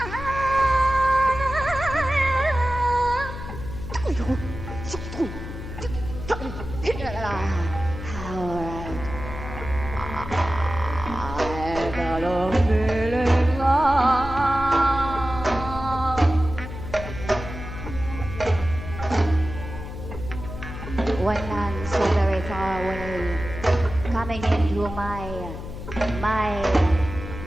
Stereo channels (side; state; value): left; noise; hum, 9 dB below the sound